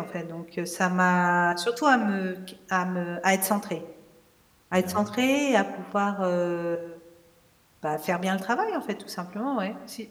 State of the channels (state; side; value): identical; both; correlation 1.00